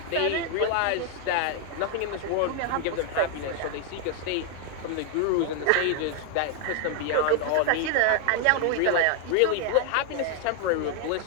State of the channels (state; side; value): different; both; correlation 0.00